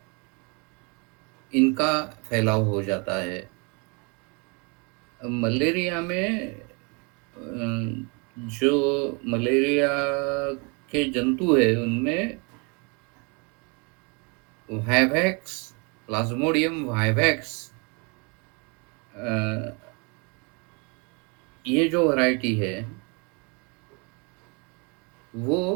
इनका फैलाव हो जाता है। मलेरिया में जो मलेरिया के जंतु है उनमें वाइवैक्स, प्लाज्मोडियम वाइवैक्स, ये जो वैरायटी है वो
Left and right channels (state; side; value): quieter; left; 32.7 dB